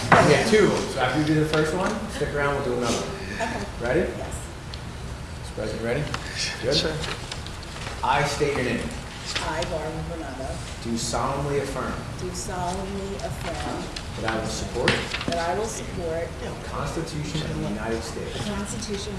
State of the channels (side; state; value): both; identical; correlation 1.00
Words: Yeah, 2 of them. So after you do the first one, stick around, we'll do another one. Okay. Ready? Yes. Mr. President, ready? Good? Sure. I state your name. I, Barbara Baronato, Do solemnly affirm do solemnly affirm that I will support that I will support the Constitution of the United States the Constitution